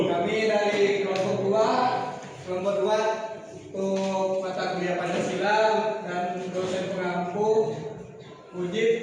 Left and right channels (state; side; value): identical; both; correlation 1.00